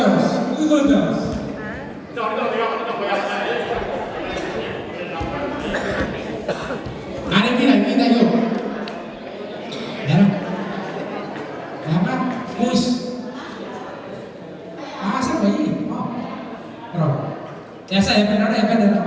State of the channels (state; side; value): identical; both; correlation 1.00